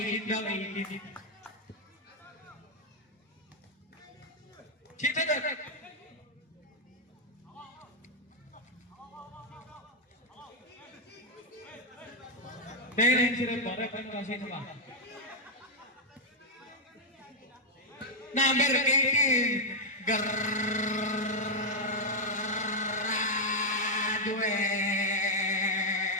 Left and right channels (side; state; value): both; normal; correlation -0.01